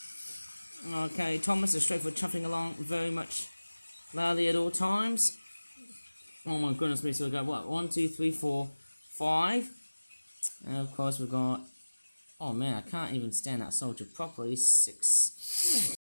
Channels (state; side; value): inverted; both; correlation -1.00